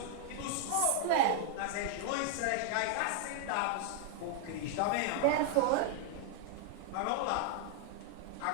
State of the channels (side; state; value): both; different; correlation 0.00